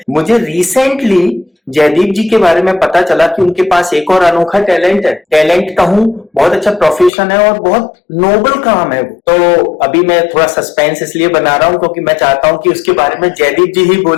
मुझे रिसेंटली जयदीप जी के बारे में पता चला कि उनके पास एक और अनोखा टैलेंट है। टैलेंट कहूं, बहुत अच्छा प्रोफेशन है और बहुत नोबल काम है वो। तो अभी मैं थोड़ा सस्पेंस इसलिए बना रहा हूं क्योंकि मैं चाहता हूं कि उसके बारे में जयदीप जी ही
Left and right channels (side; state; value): right; drops out; at 7.1 s